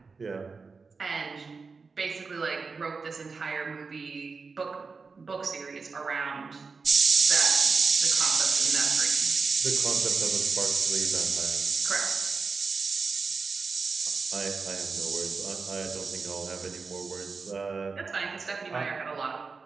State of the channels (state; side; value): quieter; left; 4.6 dB